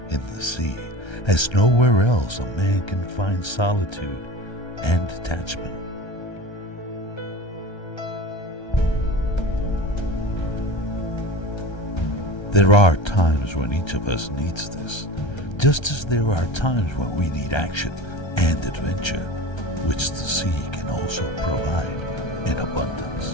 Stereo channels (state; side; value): late; right; 1.3 ms